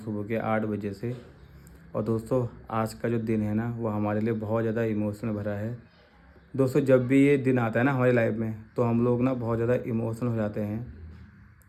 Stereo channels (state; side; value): identical; both; correlation 1.00